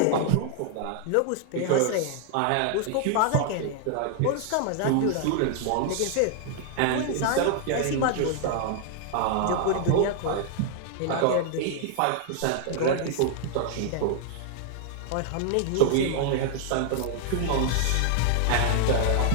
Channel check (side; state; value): both; different; correlation 0.00